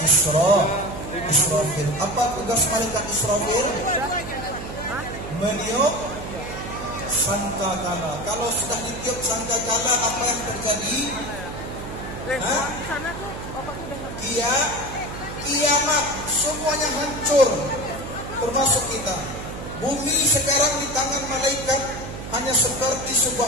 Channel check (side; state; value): right; noise; hum, 10 dB below the sound